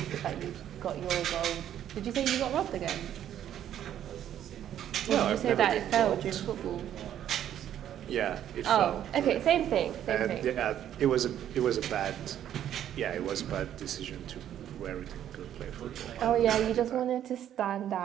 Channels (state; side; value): quieter; left; 10.7 dB